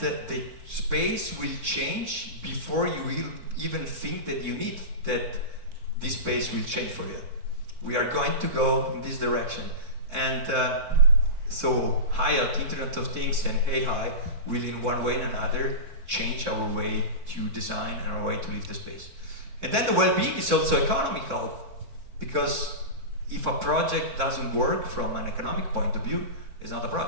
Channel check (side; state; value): left; late; 4.5 ms